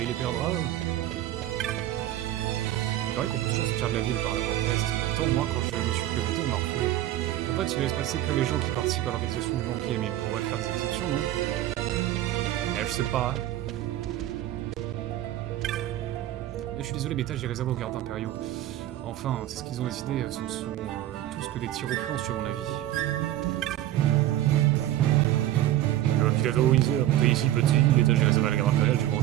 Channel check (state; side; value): quieter; left; 13.6 dB